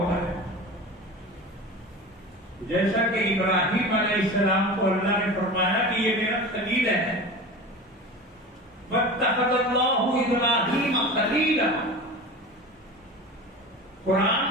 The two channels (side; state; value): both; normal; correlation 0.32